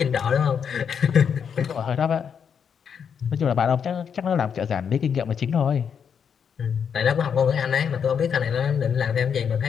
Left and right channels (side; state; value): right; quieter; 7.3 dB